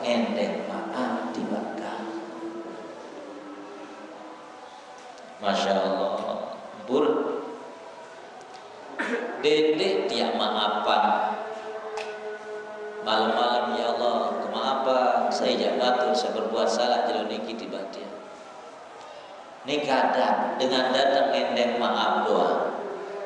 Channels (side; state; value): both; identical; correlation 1.00